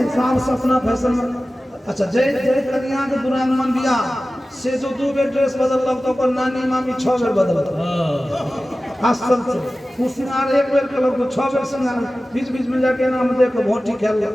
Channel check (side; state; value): both; normal; correlation 0.96